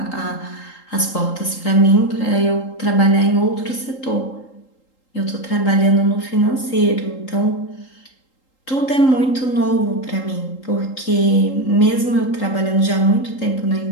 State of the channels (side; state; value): right; late; 3.8 ms